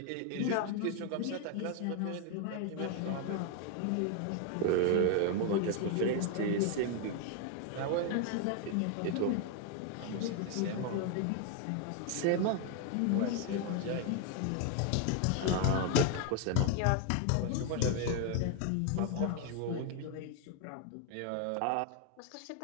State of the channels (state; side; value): different; both; correlation 0.01